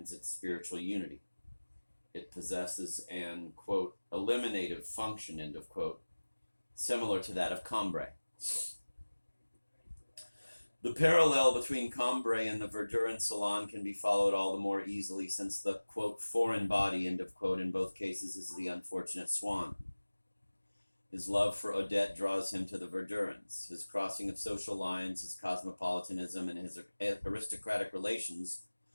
its spiritual unity. It possesses an, quote, eliminative function, end of quote, similar to that of Cambrai. The parallel between Cambrai and the Verdurin salon can be followed all the more easily since the, quote, foreign body, end of quote, in both cases is the unfortunate Swann. His love for Odette draws him to the Verdurins. His crossing of social lines, his cosmopolitanism, and his aristocratic relations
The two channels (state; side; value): inverted; both; correlation -1.00